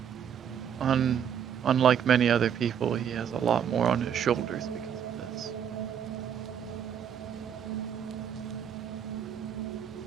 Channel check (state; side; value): quieter; left; 8.5 dB